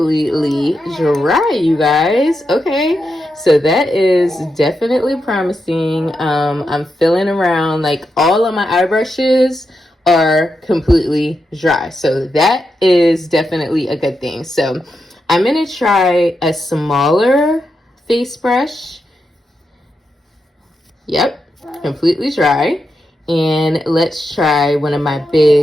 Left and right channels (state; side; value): normal; both; correlation 0.86